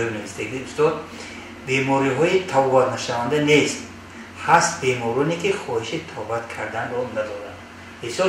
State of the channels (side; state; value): both; identical; correlation 1.00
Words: نوشته استاد بیماری های توبات نشونده نیست. هست بیمارانی که خواهش توبت کردن رو ندارن.